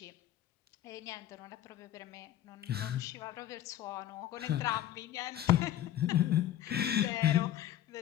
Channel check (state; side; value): quieter; right; 12.2 dB